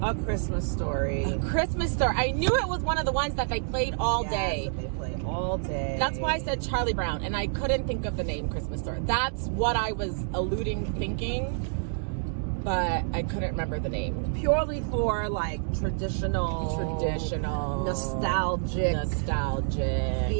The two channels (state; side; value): silent; left; digital silence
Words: A Christmas Story. A Christmas Story. I knew it was one of the ones that they played all day. They play all day. That's why I said Charlie Brown, and I couldn't think of the name Christmas Story. That's what I was thinking, but I couldn't remember the name. Purely for like traditional, nostalgic